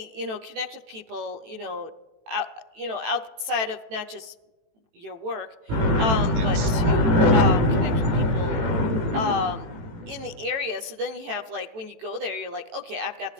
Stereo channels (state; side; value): late; left; 18 ms